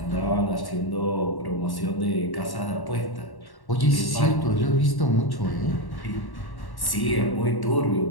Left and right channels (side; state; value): right; late; 1.1 ms